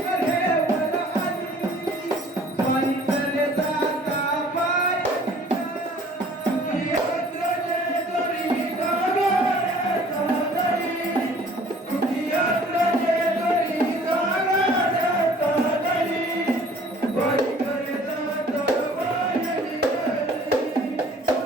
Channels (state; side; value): normal; both; correlation 0.53